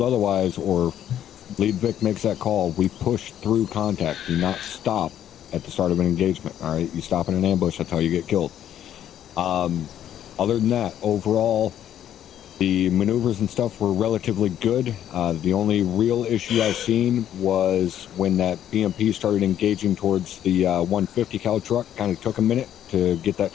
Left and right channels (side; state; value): right; quieter; 10.7 dB